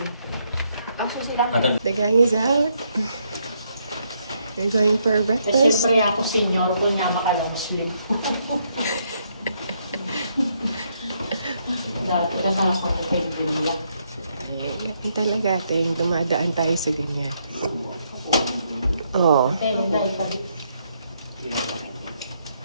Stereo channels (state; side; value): inverted; both; correlation -0.75